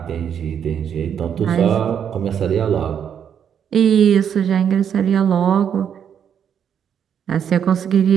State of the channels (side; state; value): left; quieter; 8.3 dB